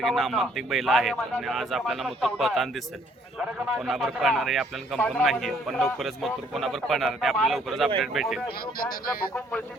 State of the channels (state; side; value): normal; both; correlation 0.64